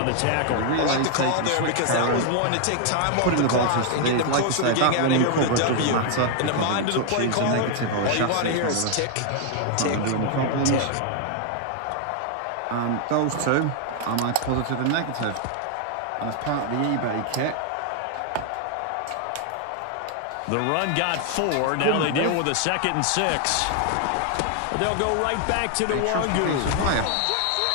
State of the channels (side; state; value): both; different; correlation 0.00